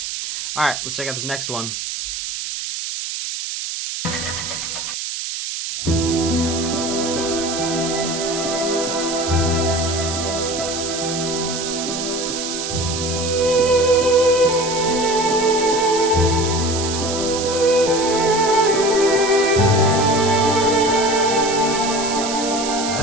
All right, let's check out this next one.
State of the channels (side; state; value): right; noise; hiss, 5 dB below the sound